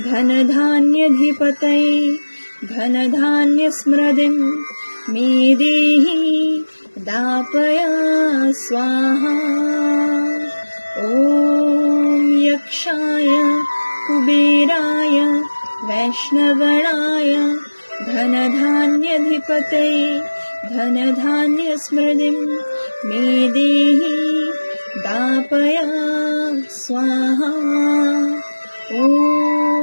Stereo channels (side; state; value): both; inverted; correlation -1.00